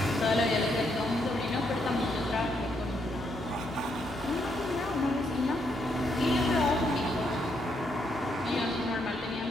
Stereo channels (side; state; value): both; normal; correlation 0.76